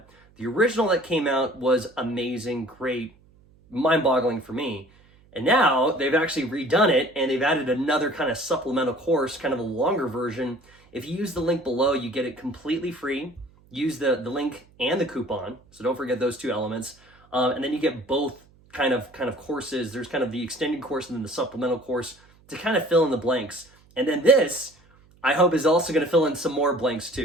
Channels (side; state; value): right; noise; hum, 29 dB below the sound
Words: The original that came out was amazing, great, mind-boggling for me. And now they've actually redone it, and they've added another kind of supplemental course, kind of a longer version. If you use the link below, you get it completely free. Use the link and the coupon, so don't forget those two elements. And then you get both kind of courses. There's kind of the extended course and then the supplemental course to kind of fill in the blanks. And then this, I hope, is also going to fill in some more blanks